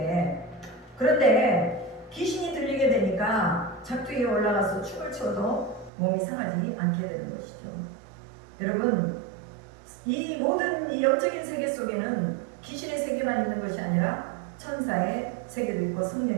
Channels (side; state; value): left; drops out; at 5.9 s